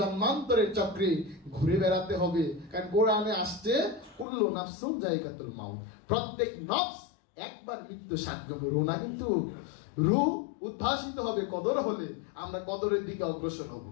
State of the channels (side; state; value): right; drops out; at 4.2 s